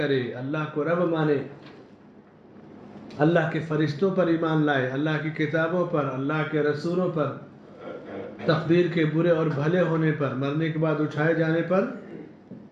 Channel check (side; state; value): both; identical; correlation 1.00